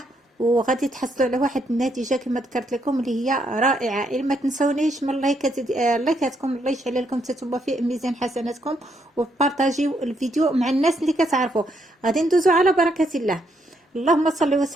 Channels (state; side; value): normal; both; correlation 0.75